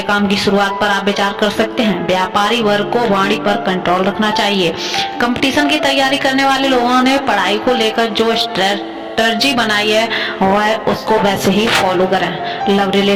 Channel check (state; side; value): identical; both; correlation 1.00